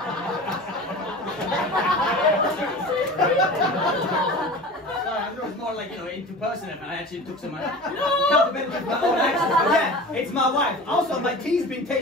It was more like, interpersonal. I actually took some accountability of my own actions. But yeah, it's my wife. Also, my tea's been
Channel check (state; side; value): normal; both; correlation 0.35